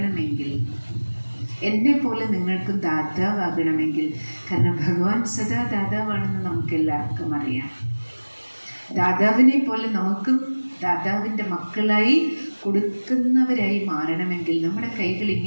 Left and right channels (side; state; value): both; inverted; correlation -1.00